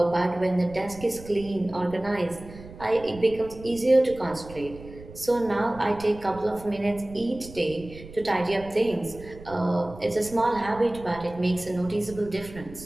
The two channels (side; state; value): right; noise; rumble, 17 dB below the sound